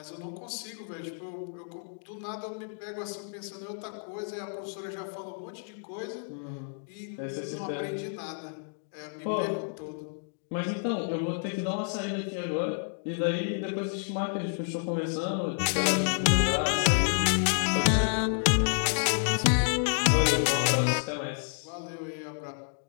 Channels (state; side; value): silent; right; digital silence